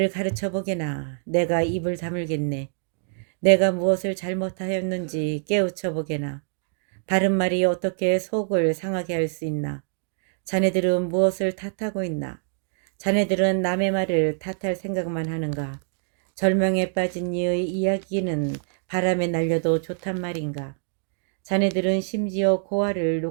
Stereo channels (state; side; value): silent; left; digital silence